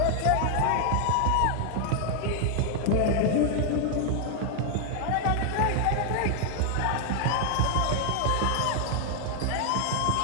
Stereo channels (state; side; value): different; both; correlation 0.00